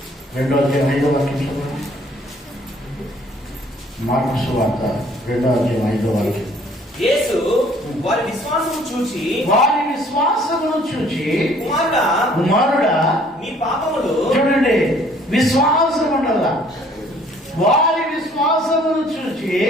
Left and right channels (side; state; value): both; normal; correlation 0.58